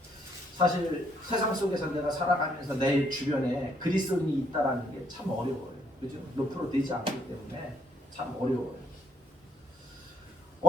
사실 세상 속에서 내가 살아가면서 내 주변에 그리스도인이 있다라는 게 참 어려워요. 그죠? 몇 프로 되지 않기 때문에 참 어려워요.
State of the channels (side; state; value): both; normal; correlation 0.70